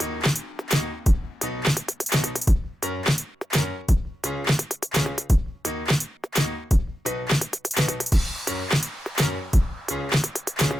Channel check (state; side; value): normal; both; correlation 0.91